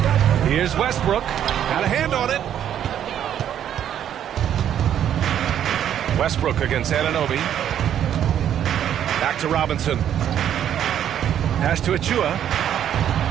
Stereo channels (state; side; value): quieter; left; 10.1 dB